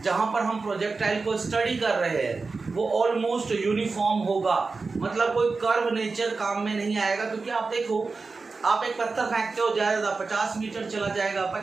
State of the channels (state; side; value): quieter; left; 4.1 dB